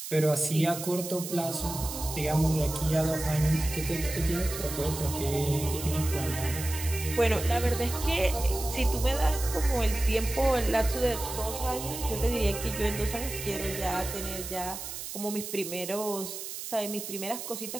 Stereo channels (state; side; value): noise; right; hiss, 8 dB below the sound